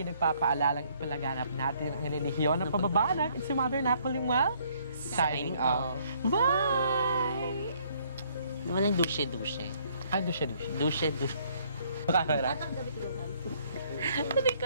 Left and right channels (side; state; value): both; inverted; correlation -0.65